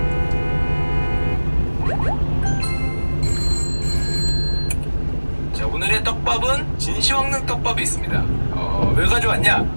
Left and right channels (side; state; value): both; inverted; correlation -1.00